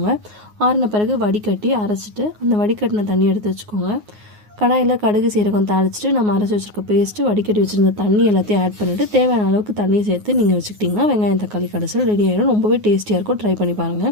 ஆறின பிறகு வடிகட்டி அரைச்சிட்டு அந்த வடிகட்டின தண்ணி எடுத்து வச்சுக்கோங்க. கடாயில் கடுகு சீரகம் தாளிச்சிட்டு நம்ம அரைச்சி வச்சுருக்க பேஸ்ட்டு, வடிகட்டி வச்சுருந்த தண்ணி எல்லாத்தையும் ஆட் பண்ணிவிட்டு தேவையான அளவுக்கு தண்ணியை சேர்த்து நீங்கள் வச்சுக்கிட்டிங்கன்னா வெங்காயம் தக்காளி கடைசல் ரெடி ஆகிடும். ரொம்பவே டேஸ்டியாக இருக்கும். ட்ரை பண்ணி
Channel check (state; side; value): late; left; 9.5 ms